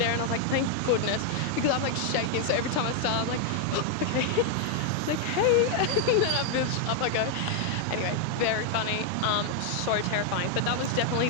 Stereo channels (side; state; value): both; different; correlation 0.00